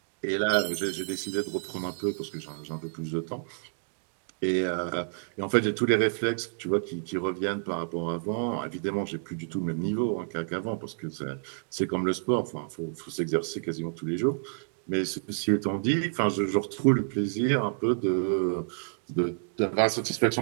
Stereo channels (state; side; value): silent; left; digital silence